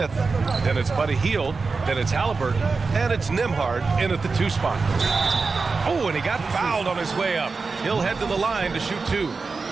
Then it's Buddy Hield. Then it's Halliburton. And it's Nembhard in at the 2 spot. Oh, and he got fouled on his way up. He'll head to the line to shoot 2.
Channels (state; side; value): quieter; left; 4.4 dB